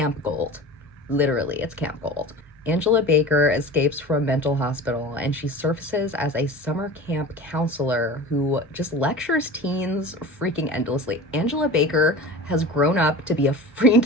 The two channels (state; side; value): normal; both; correlation 0.35